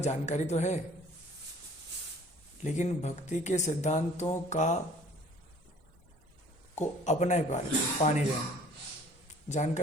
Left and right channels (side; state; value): both; normal; correlation 0.53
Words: जानकारी तो है, लेकिन भक्ति के सिद्धांतों का को अपना ही पा नहीं रहे।